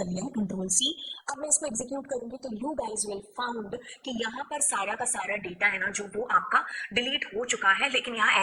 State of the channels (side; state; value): both; identical; correlation 1.00